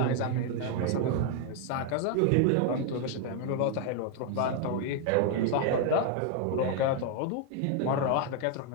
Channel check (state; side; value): different; both; correlation 0.00